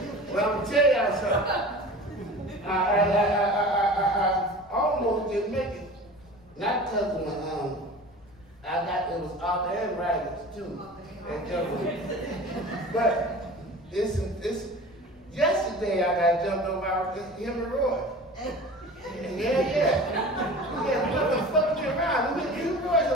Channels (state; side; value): noise; left; rumble, 27 dB below the sound